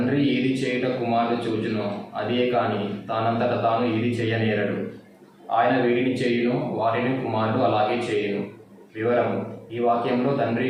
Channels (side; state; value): both; identical; correlation 1.00